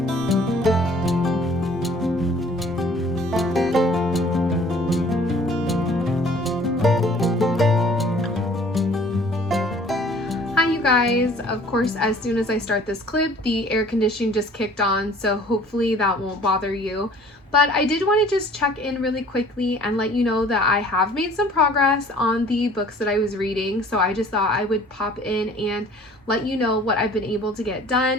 guys. Of course, as soon as I start this clip, the air conditioning just kicked on, so hopefully that won't bother you. But I did want to just check in really quickly and let you know that I have made some progress on the books that I was reading, so I just thought I would pop in and let you know what I've been able to get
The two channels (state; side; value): normal; both; correlation 0.52